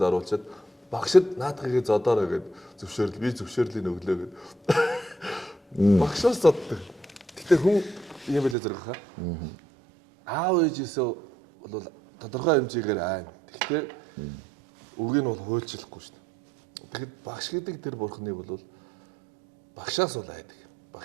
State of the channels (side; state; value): left; drops out; at 8.6 s